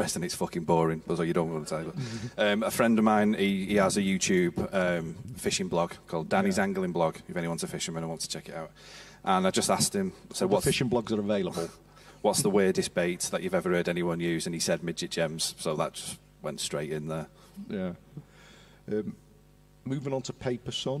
it's fucking boring, so you don't want to tell you. A friend of mine, he has a YouTube fishing blog called Danny's Angling Blog, if anyone's a fisherman and wants to check it out. And I just asked him, so what fishing blogs are available? What's the weirdest bait that you've ever heard anyone use? And he said midget gems, so that just went straight in there. Yeah. Moving on to Paper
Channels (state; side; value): identical; both; correlation 1.00